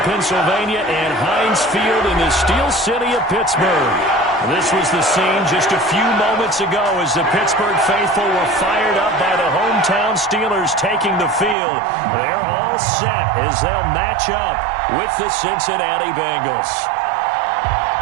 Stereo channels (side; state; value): left; drops out; at 11.6 s